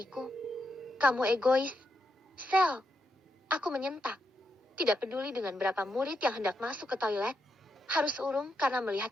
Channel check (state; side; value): normal; both; correlation 0.83